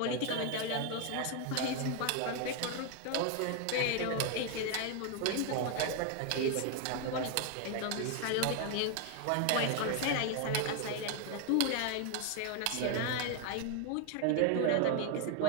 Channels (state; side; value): different; both; correlation 0.01